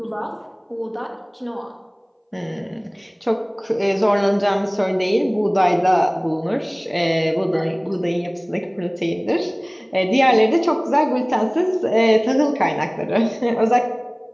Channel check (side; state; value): both; identical; correlation 1.00